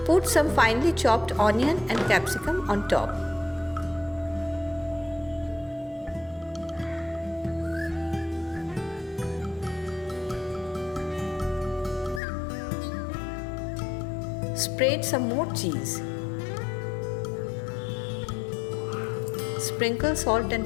put some finely chopped onion and capsicum on top. Spread some more cheese. Sprinkle salt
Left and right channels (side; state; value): right; drops out; at 12.2 s